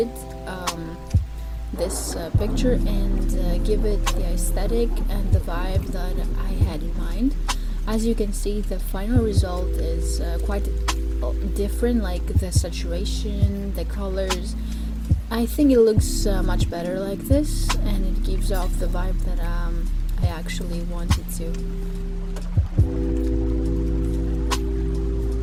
this picture and give it the aesthetic and the vibe that I had in mind. As you can see, the final result is quite different, like the saturation, the colors. I think it looks much better like this, and it gives off the vibe that I actually wanted to.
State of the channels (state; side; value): identical; both; correlation 1.00